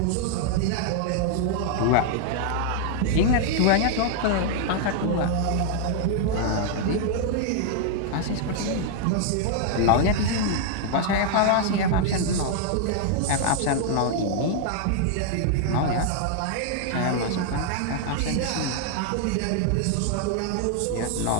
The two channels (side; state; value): both; different; correlation 0.00